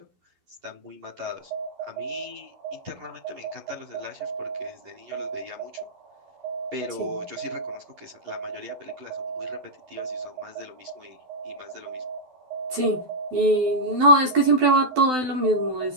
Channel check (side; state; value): left; late; 12 ms